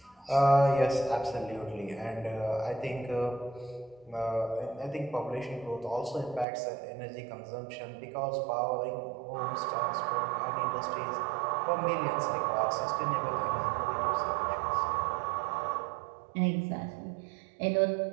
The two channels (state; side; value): drops out; left; at 6.5 s